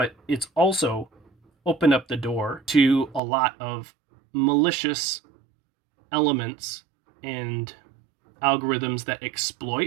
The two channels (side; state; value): left; drops out; at 3.2 s